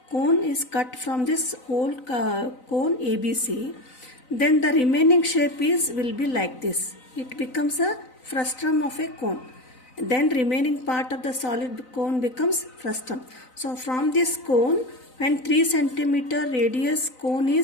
Cone is cut from this whole cone ABC. Then the remaining shape will be like this. It becomes a frustum of a cone. Then remaining part of the solid cone becomes frustum. So from this cone, when 3 centimeter radius cone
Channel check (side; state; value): right; late; 3.9 ms